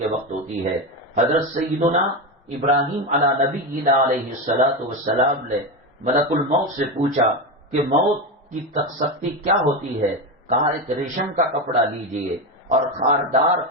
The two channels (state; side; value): normal; both; correlation 0.15